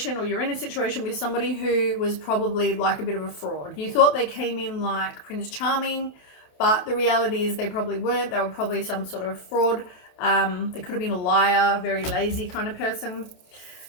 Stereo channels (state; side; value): late; right; 28 ms